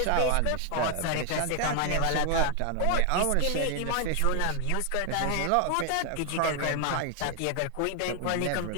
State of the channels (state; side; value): different; both; correlation 0.00